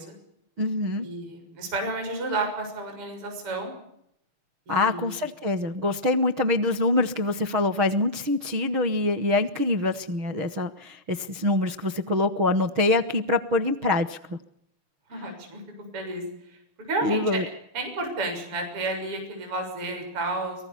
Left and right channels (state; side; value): late; left; 6.3 ms